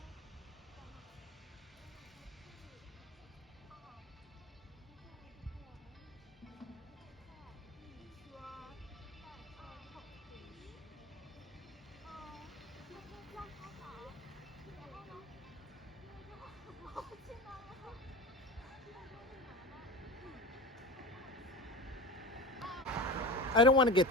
I don't want to get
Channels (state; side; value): normal; both; correlation 0.29